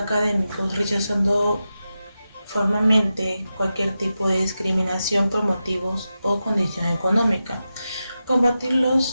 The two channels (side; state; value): both; inverted; correlation -0.91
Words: rechazando formalmente cualquier tipo de discriminación por motivos o condición económica. Combatir